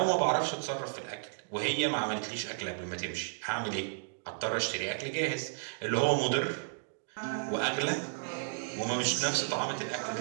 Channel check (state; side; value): silent; left; digital silence